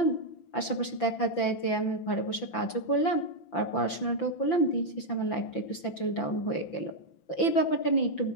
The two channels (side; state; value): right; late; 5.9 ms